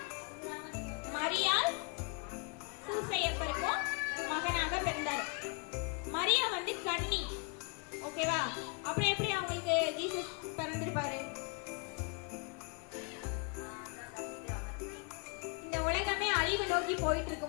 மரியாள் சூசையப்பருக்கும் மகனாக பிறந்தாரு. மரியா வந்து கன்னி. ஓகேவா? அப்புறம் எப்படி அவங்களுக்கு ஜீசஸ் பிறந்திருப்பாரு? இந்த உலகமே அழிவு நோக்கி போயிட்டு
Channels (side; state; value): right; quieter; 33.2 dB